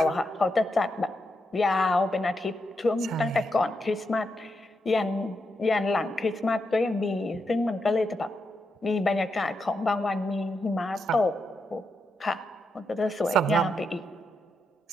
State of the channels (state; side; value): normal; both; correlation 0.84